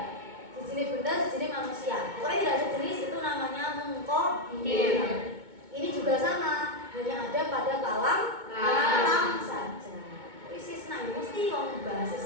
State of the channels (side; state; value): left; late; 2.2 ms